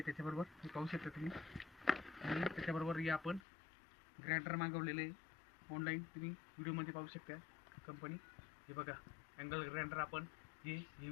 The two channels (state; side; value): drops out; right; at 3.4 s